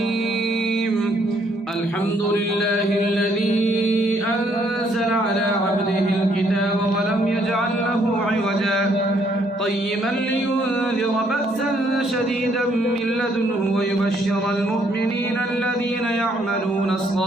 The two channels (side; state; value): both; normal; correlation 0.68